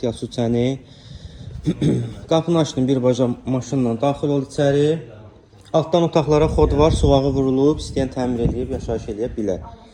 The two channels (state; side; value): identical; both; correlation 1.00